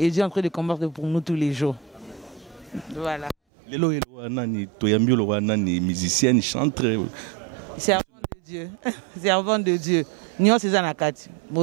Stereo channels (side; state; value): left; drops out; at 3.4 s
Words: Dieu est en train de combattre pour nous tous les jours. Voilà. Les musiciennes, chantent. Servant de Dieu. Servant de Dieu. Nous sommes en Akati.